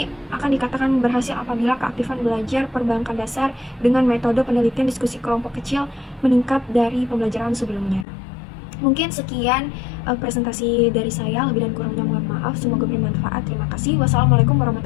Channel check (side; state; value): right; drops out; at 8.1 s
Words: akan dikatakan berhasil apabila keaktifan belajar perbankan dasar dengan metode penelitian diskusi kelompok kecil meningkat dari pembelajaran sebelumnya. Mungkin sekian presentasi dari saya, lebih dan kurangnya mohon maaf, semoga bermanfaat. Terima kasih. Wassalamualaikum